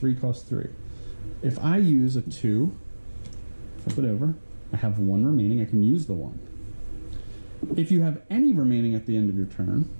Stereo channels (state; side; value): inverted; both; correlation -1.00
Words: cost 3. If I use a 2, flip it over, I have 1 remaining, I can use the 1. If you have any remaining at the end of your turn,